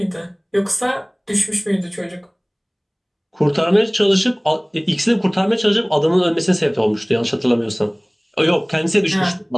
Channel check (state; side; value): identical; both; correlation 1.00